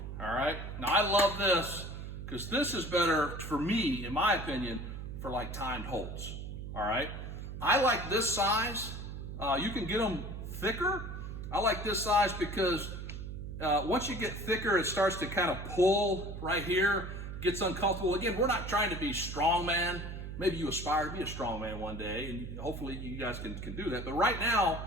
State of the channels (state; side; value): noise; right; hum, 8 dB below the sound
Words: all right? Now, I love this because this is better for me, in my opinion, for like timed holds, all right? I like this size. You can get them thicker. I like this size because once you get thicker, it starts to kind of pull right here, gets uncomfortable. Again, we're not trying to be strongman. Maybe you aspire to be a strongman one day, and hopefully you guys can do that. But right now,